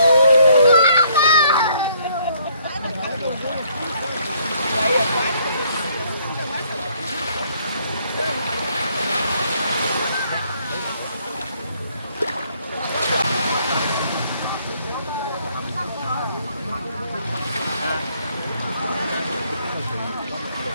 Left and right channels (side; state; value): both; inverted; correlation -0.66